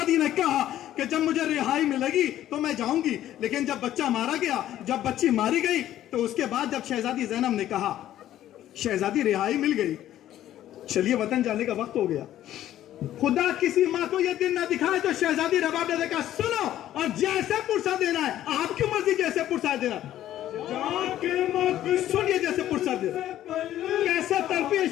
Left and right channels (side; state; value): right; quieter; 12.6 dB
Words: ने कहा कि जब मुझे रिहाई मिलेगी तो मैं जाऊंगी, लेकिन जब बच्चा मारा गया, जब बच्ची मारी गई, तो उसके बाद जब शहजादी ज़ैनब ने कहा, शहजादी रिहाई मिल गई, चलिए वतन जाने का वक्त हो गया। खुदा किसी माँ को यह दिन ना दिखाए तो शहजादी रबाब ने देखा, सुनो और जैसे पुरसा देना है, आपकी मर्जी, जैसे पुरसा देना, सुनिए जैसे पुरसा देना। कैसे तड़पी है